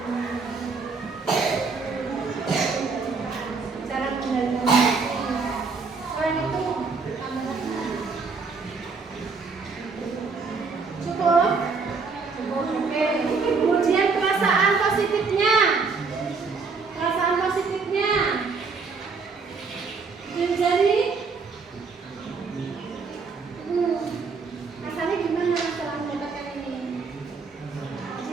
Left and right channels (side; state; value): left; quieter; 4.7 dB